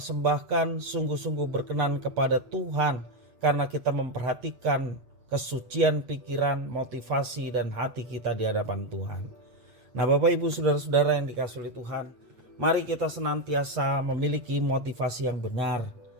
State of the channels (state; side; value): late; left; 8.4 ms